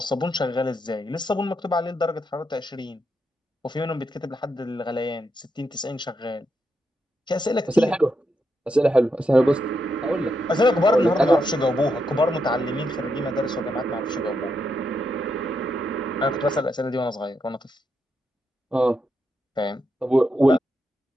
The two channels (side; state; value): both; normal; correlation 0.82